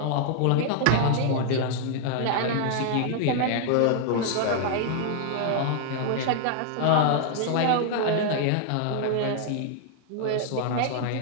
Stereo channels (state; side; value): different; both; correlation 0.00